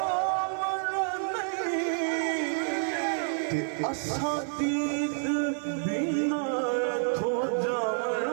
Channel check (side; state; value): left; silent; 59 dB below the other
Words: ते असां दीद बिना